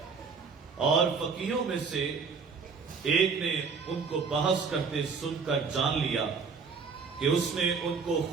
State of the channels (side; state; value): left; quieter; 5.3 dB